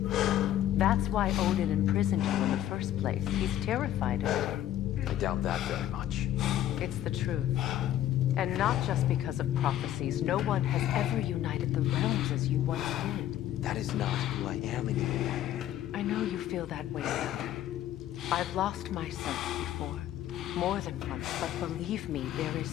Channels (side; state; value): right; quieter; 12.3 dB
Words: That's why Odin imprisoned you in the first place. He's terrified of you. I doubt that very much. It's the truth. And not just because of prophecies. No one has ever united the realms as you once did. That is not who I am anymore. I know you feel that way now. I've lost myself before. More than once, but believe me, there is